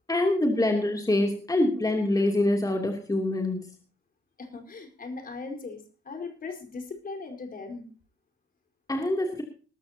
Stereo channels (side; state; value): both; normal; correlation 0.84